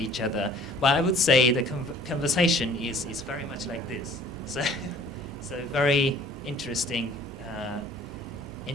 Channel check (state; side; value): normal; both; correlation 0.52